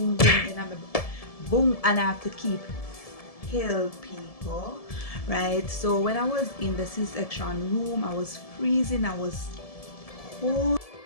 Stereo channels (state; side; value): late; right; 1.7 ms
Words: boom, and I'm boom, and I have to keep heal people, right? So when I was in the C-section room, I was freezing, I was cold,